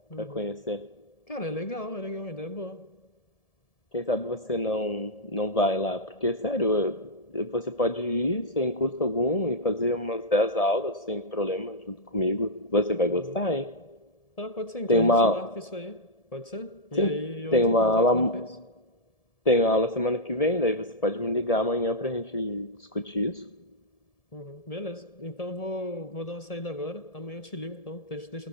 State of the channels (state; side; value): late; right; 1.7 ms